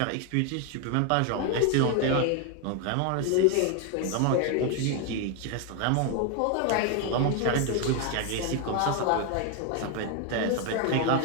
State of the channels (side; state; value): both; different; correlation 0.01